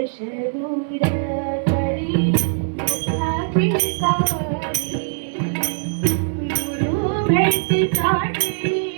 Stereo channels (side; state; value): left; silent; 65 dB below the other